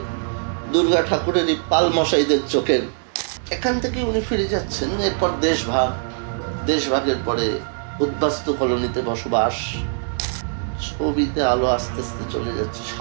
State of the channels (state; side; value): silent; left; digital silence